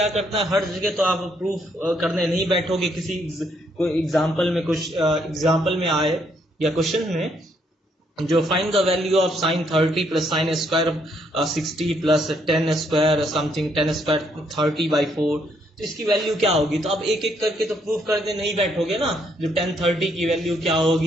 करना है, हर जगह तो आप प्रूफ करने नहीं बैठोगे, किसी कोई एग्जाम्पल में कुछ एग्जाम्पल में आए या क्वेश्चन में जो find the value of sine 30 plus sine square 60 plus ten square something 10 square 30/4, तो इसकी वैल्यू क्या होगी। तो अब एक एक करके तो प्रूफ करने नहीं बैठोगे ना, जो 1030 की वैल्यू क्या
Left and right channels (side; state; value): both; normal; correlation 0.72